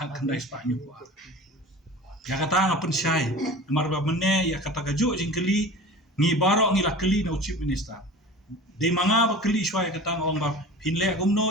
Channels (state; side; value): normal; both; correlation 0.38